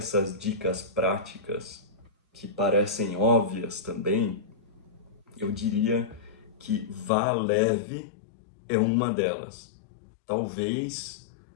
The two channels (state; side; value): drops out; right; at 7.1 s